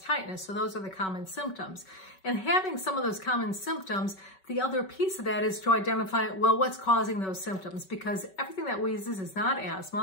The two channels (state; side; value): late; right; 5.3 ms